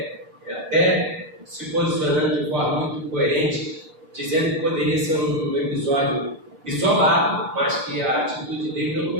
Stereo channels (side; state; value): left; late; 6.2 ms